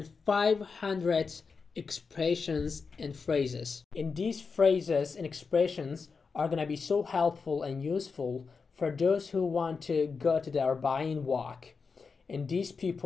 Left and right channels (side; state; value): right; quieter; 5.0 dB